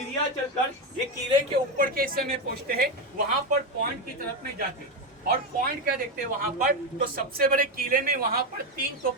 चलकर ये किले के ऊपर के हिस्से में पहुंचते हैं, वहां पर पॉइंट की तरफ में जाते हैं। और पॉइंट क्या देखते हैं वहां पर, तो सबसे बड़े किले में वहां पर 3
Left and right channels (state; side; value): normal; both; correlation 0.11